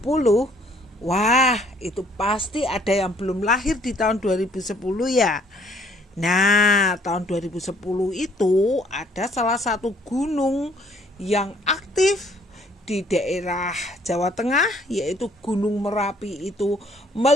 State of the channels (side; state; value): both; normal; correlation 0.61